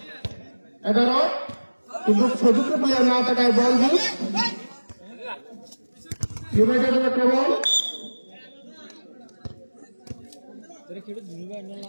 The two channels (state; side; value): inverted; both; correlation -1.00